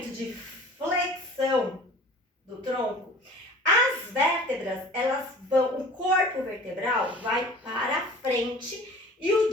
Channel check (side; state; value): both; normal; correlation 0.44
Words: de flexão do tronco, as vértebras, elas vão, o corpo vertebral vai para frente e o